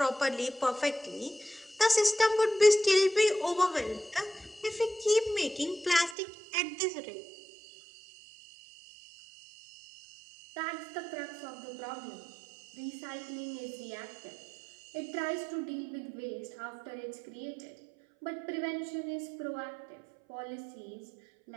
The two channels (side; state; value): left; drops out; at 6.2 s